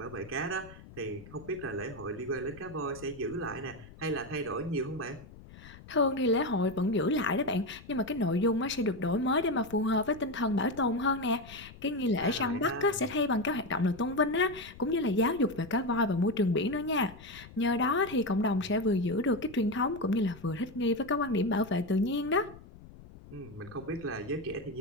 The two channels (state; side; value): noise; left; rumble, 19 dB below the sound